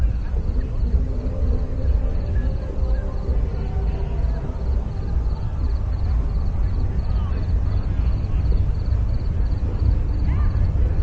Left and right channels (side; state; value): both; identical; correlation 1.00